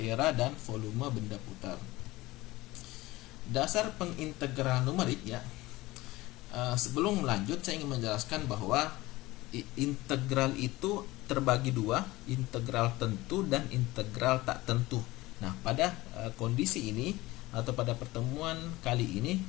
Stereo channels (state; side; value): quieter; right; 19.4 dB